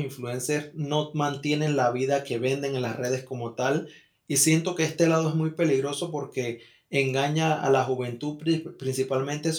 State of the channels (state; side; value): identical; both; correlation 1.00